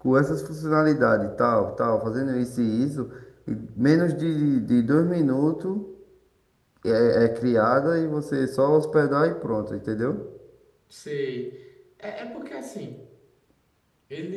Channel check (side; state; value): both; identical; correlation 1.00